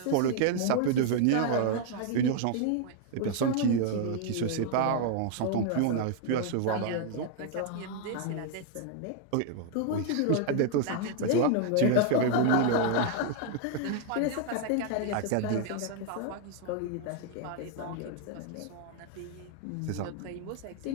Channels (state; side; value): different; both; correlation 0.00